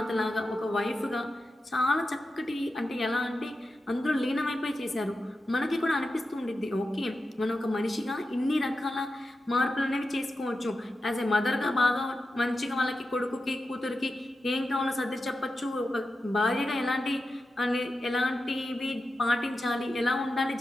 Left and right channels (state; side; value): normal; both; correlation 0.91